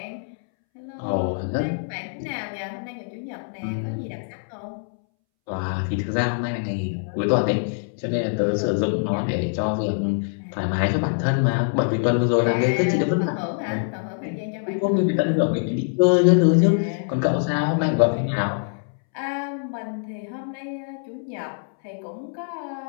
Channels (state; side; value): silent; right; 63 dB below the other